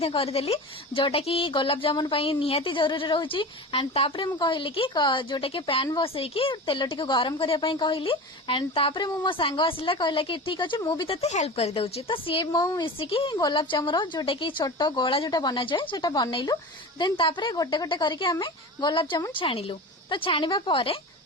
करदेली जोटा कि गोलाप जामुन निहाती जरूरी रोचे एंड तापर मु कहली कि जोटा कि पैन बसईकी तेल टी गरम करने कहली एंड तापर मो सांग आसला कहला कि ठीक अच्छे मुझे तेते हेल्प कर दउची तो सी मो मिसिकी गोलाप जामुन जोटा कि छोट गोला जोटा बना जाए सेटा बनइलु देन तापर गोटे गोटे करके आमे गोलाप जामुन छाणिलु तो छाणिबा परे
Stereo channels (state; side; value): normal; both; correlation 0.31